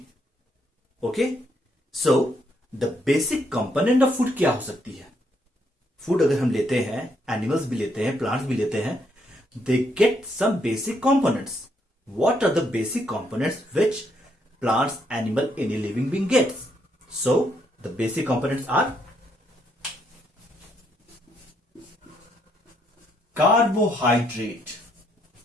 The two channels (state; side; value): normal; both; correlation 0.73